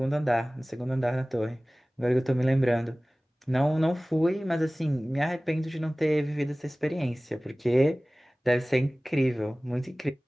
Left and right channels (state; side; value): normal; both; correlation 0.98